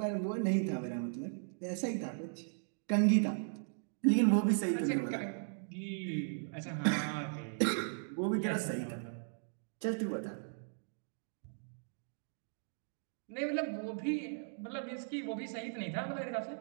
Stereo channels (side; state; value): left; silent; digital silence